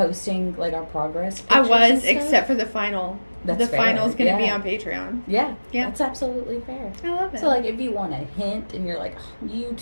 like, our progress I pictures was, and stuff? except for the final. That's the fair. final's going to be Yeah. on Patreon. Yeah. Yeah. That's absolutely fair. I love it. So, like, if you want a hint and you're like,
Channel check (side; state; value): both; inverted; correlation -1.00